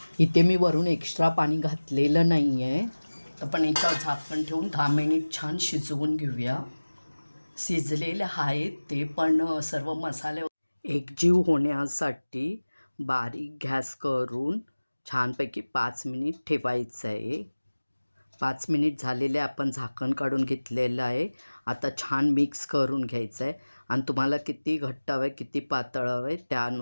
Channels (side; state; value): both; inverted; correlation -1.00